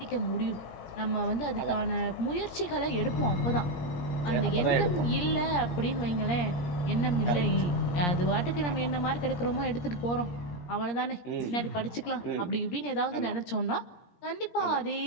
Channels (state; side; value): late; right; 17 ms